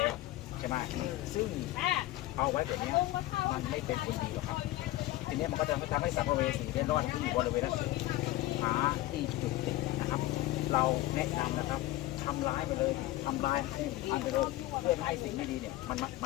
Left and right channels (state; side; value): quieter; right; 16.6 dB